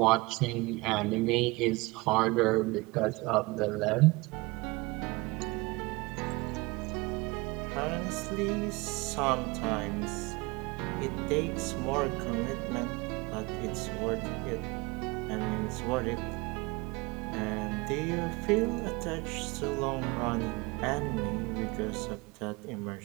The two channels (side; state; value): left; quieter; 24.2 dB